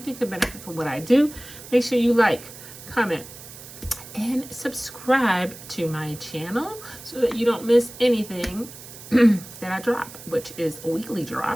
could benefit from what I do. Make sure you like, comment, and subscribe to my channel so that you don't miss anything that I drop, which is weekly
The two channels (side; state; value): right; noise; hiss, 16 dB below the sound